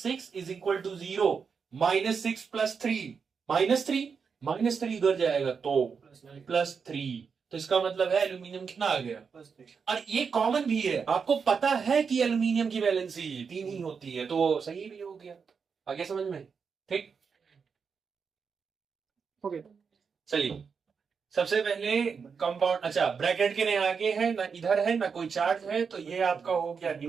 इज इक्वल टू 0, -6 + 3 -3, -3 उधर जाएगा तो +3, तो इसका मतलब है एल्यूमिनियम कितना आ गया, और ये कॉमन भी है, आपको पता है कि एल्यूमिनियम की वैलेंसी 3 ही होती है, तो सही भी हो गया। आगे समझ में, ठीक, ओके चलिए। सबसे पहले कंपाउंड, अच्छा ब्रैकेट के आगे है ना, इधर है ना कोई चार्ज है, तो ये आपका हो गया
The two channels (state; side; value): quieter; left; 5.9 dB